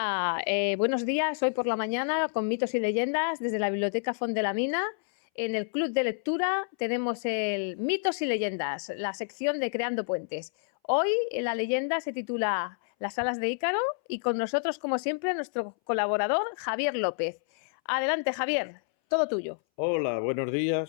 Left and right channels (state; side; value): silent; right; 59 dB below the other